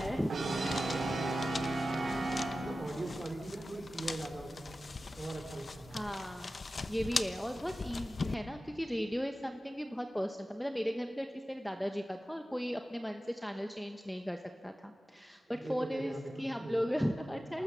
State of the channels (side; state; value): both; normal; correlation 0.94